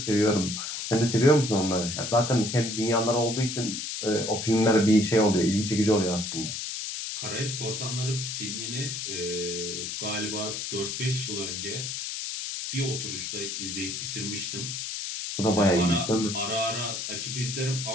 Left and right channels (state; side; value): noise; left; hiss, 5 dB below the sound